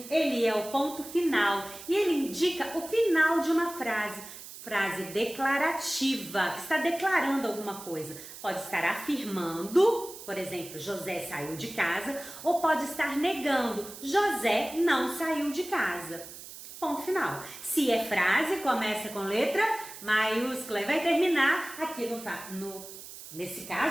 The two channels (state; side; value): noise; right; hiss, 14 dB below the sound